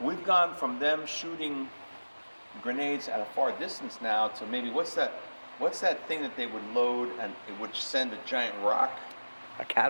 gone from them shooting grenades at a far distance now to maybe, what's that thing that they would load and it would send a giant rock? A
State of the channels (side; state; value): both; inverted; correlation -1.00